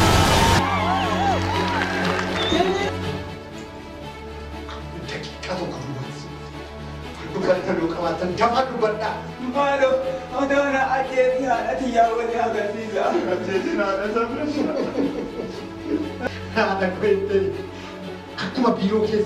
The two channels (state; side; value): identical; both; correlation 1.00